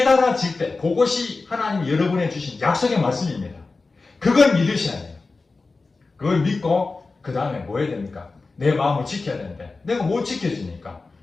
때 그것이 하나님이 여러분에 주신 약속의 말씀입니다. 그걸 믿으셔야 돼요. 그걸 믿고 그 다음에 뭐 해야 됩니까? 내 마음을 지켜야 되는데 내가 못 지켜주니까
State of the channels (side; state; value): right; quieter; 3.8 dB